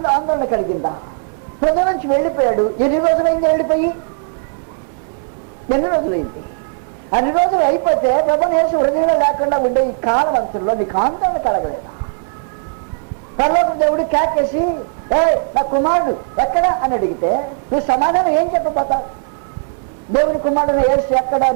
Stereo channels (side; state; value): left; silent; 67 dB below the other